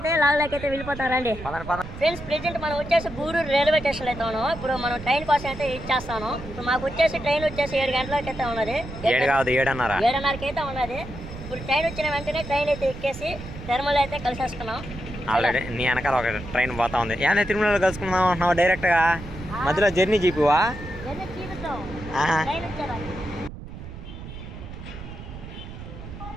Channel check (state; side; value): noise; right; rumble, 12 dB below the sound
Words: లాగ్లోకి అయితే వెళ్ళిపోతాం. రండి ఫ్రెండ్స్, ప్రెజెంట్ మనం వచ్చేసి గూడూరు రైల్వే స్టేషన్ అయితే ఉన్నాం. ఇప్పుడు మనం ట్రైన్ కోసం అయితే ఇచ్చేస్తాను. ఇప్పుడు మాకు వచ్చేసి ట్రైన్ వచ్చేసి 7 గంటలకి అయితే ఉన్నది. 7:30కి అయితే ఉన్నది. ఇప్పుడు ట్రైన్ వచ్చిన వెంటనే ట్రైన్ అయితే ఎక్కేసి తిరుమల అయితే కలిసేసుకున్నాం. ఆల్రెడీ నీ వెనకాల ఒక ట్రైన్ పోతా ఉంది. ఏమైనా తిరుమలలో కలుసుకుందాం అంటున్నావు డైరెక్ట్ గా? మధ్యలో జర్నీ జీపువా?